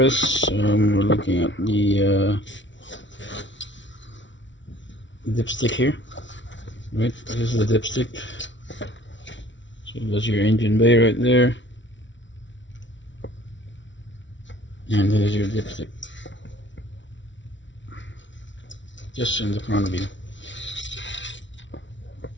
We're looking at the dipstick here. Right, this is the dipstick. So that's your engine bay right there, and there's your dipstick, just in the front of you.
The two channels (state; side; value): late; right; 0.55 ms